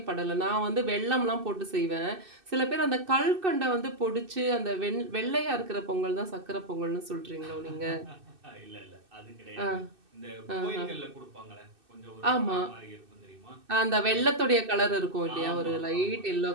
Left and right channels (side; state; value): left; late; 2.6 ms